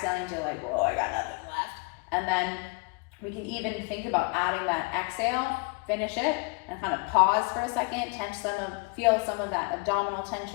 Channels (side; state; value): right; quieter; 31.2 dB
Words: until like, whoa, I got nothing left. And then we can even think about adding that exhale, finish it, and kind of pause for a second, feel some of that abdominal